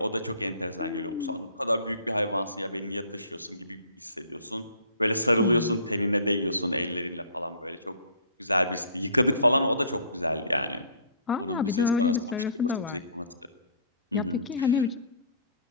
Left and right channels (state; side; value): inverted; both; correlation -0.51